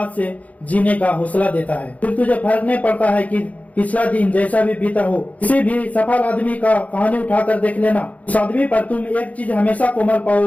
से जीने का हौसला देता है। फिर तुझे फर्क नहीं पड़ता है कि पिछला दिन जैसा भी बीता हो। किसी भी सफल आदमी का कहानी उठाकर देख लेना, उस आदमी पर तुम एक चीज हमेशा कोमल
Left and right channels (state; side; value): late; right; 0.070 ms